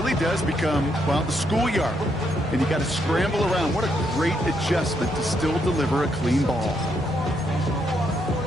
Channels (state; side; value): normal; both; correlation 0.77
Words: does become, well, the schoolyard. And you got to scramble around. What a great adjustment to still deliver a clean ball.